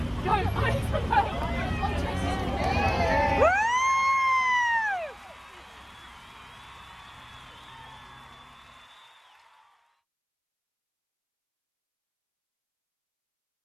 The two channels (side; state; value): both; identical; correlation 1.00